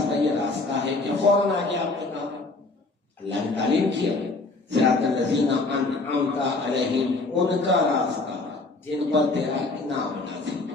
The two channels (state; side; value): quieter; right; 3.4 dB